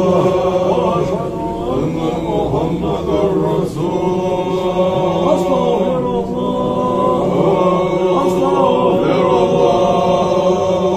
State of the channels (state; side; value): identical; both; correlation 1.00